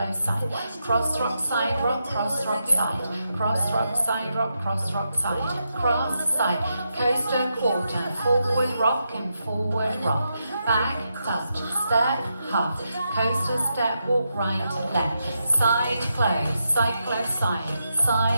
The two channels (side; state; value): both; inverted; correlation -0.84